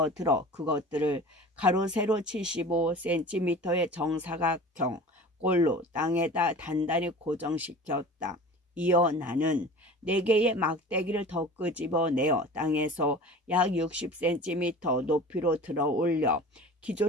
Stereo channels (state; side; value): normal; both; correlation 0.39